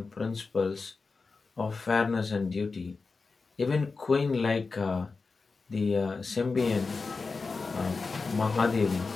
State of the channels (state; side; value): quieter; right; 4.3 dB